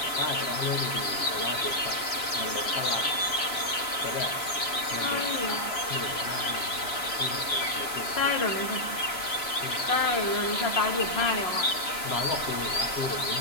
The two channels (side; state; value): right; late; 2.9 ms